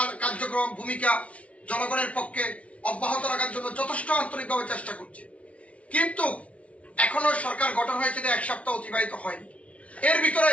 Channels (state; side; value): late; right; 0.064 ms